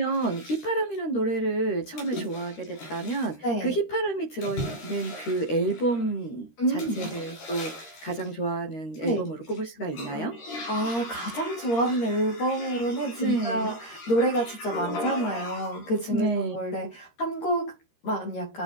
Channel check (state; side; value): late; right; 13 ms